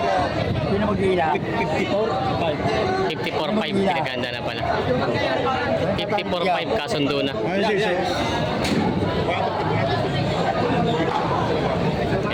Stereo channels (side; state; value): both; identical; correlation 1.00